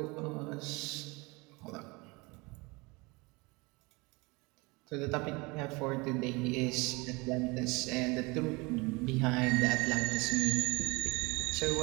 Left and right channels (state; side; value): quieter; left; 25.8 dB